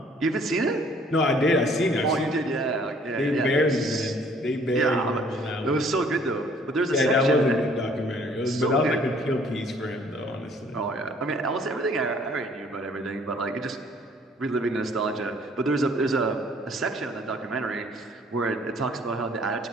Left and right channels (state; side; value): normal; both; correlation 0.59